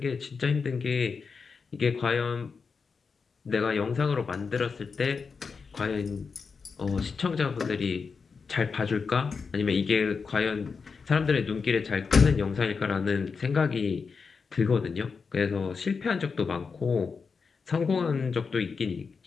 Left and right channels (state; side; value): quieter; right; 5.2 dB